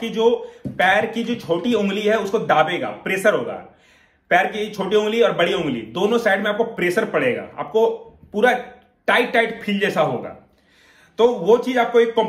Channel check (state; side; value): identical; both; correlation 1.00